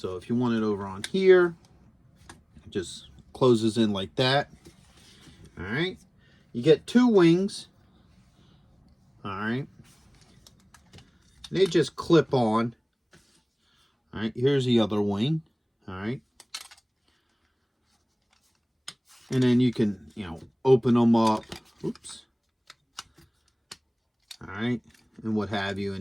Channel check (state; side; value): identical; both; correlation 1.00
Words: if you want it over on here, it just closes in like that. All right. You get 2 wings. All right. They just clip on. All right. Here's the other wing. All right. And then you can, you know, open them up. Oops. All right. And what have you.